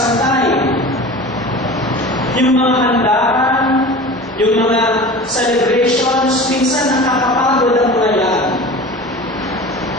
time. Yung mga handaan, Yung mga celebrations, minsan nakakapagod ang mga yan.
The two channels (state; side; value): normal; both; correlation 0.36